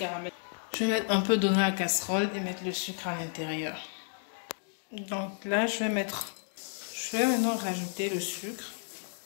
Je vais mettre un peu d'eau dans la casserole et mettre le sucre à l'intérieur. Donc là, je vais maintenant rajouter le sucre.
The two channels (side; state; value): right; silent; 57 dB below the other